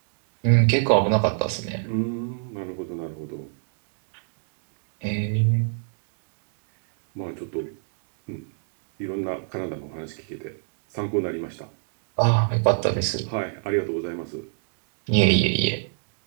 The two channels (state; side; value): silent; left; digital silence